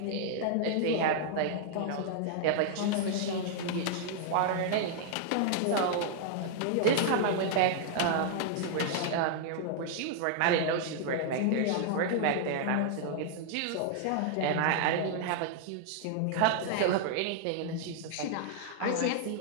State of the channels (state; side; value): different; both; correlation -0.01